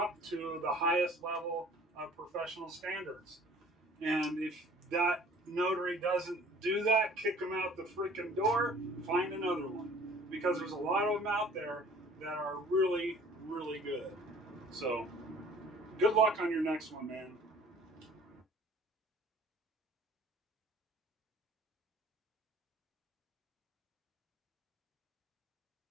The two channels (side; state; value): both; normal; correlation 0.50